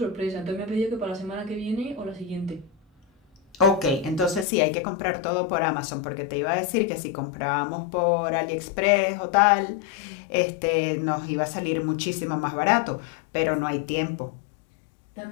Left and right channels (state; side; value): drops out; right; at 4.5 s